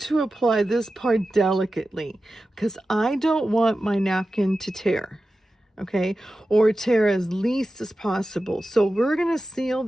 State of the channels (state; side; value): normal; both; correlation 0.93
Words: apply this part delicately because I don't want my napkin to tear, okay? Or tear as least as possible. So we're going to seal